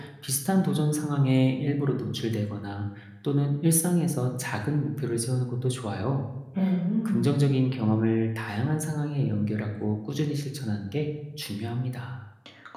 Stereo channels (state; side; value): identical; both; correlation 1.00